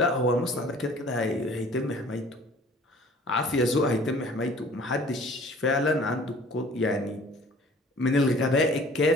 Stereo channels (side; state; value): both; normal; correlation 0.50